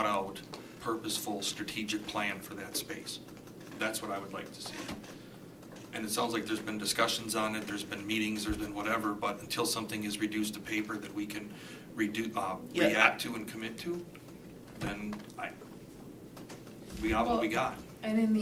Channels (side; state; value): both; identical; correlation 1.00